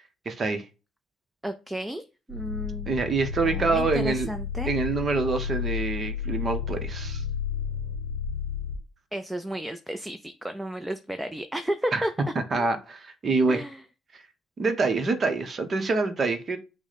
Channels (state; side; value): normal; both; correlation 0.61